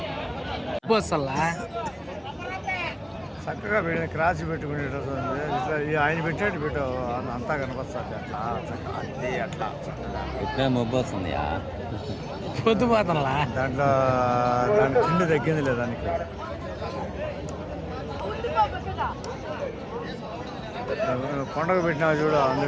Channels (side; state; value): both; identical; correlation 1.00